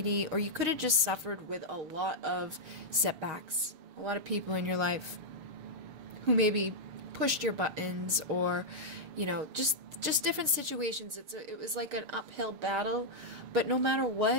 or you could have just suffered with a lot of setbacks. A lot of people in your life who maybe pushed your buttons, or, you know, just different situations. It was like an uphill battle, but no matter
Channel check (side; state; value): left; late; 6.9 ms